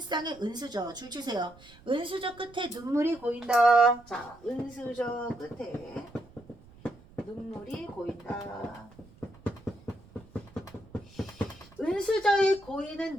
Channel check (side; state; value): right; noise; rumble, 24 dB below the sound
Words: 쌍의 은수저. 줄 치세요. 은수저 끝에 눈물이 고인다. 자, 은수저 끝에 눈물이 고인다. 은수저에